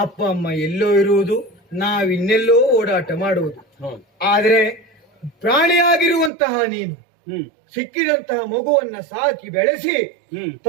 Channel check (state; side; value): drops out; left; at 6.3 s